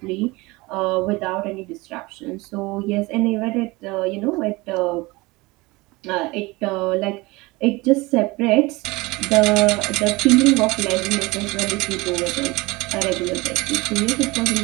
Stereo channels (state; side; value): quieter; left; 22.8 dB